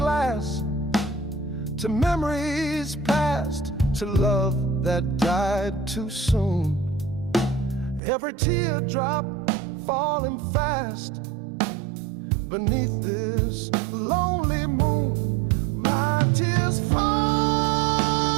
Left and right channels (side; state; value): left; drops out; at 8.0 s